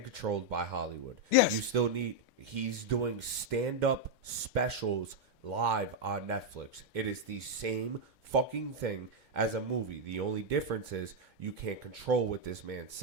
controlled by Hollywood. Yes. You still need... He's doing stand-up specials live on Netflix. It is the same fucking thing as a movie. The only difference is you can't control what this man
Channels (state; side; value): normal; both; correlation 0.00